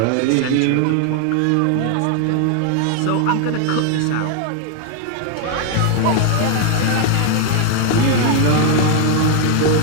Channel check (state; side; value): different; both; correlation 0.00